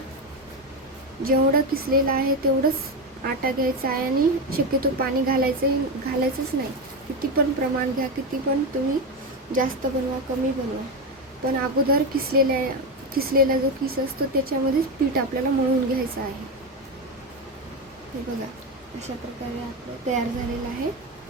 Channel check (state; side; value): normal; both; correlation 0.14